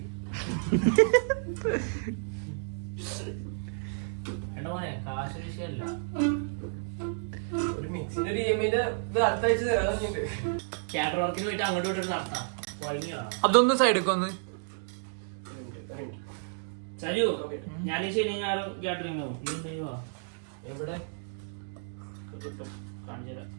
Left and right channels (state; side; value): silent; left; digital silence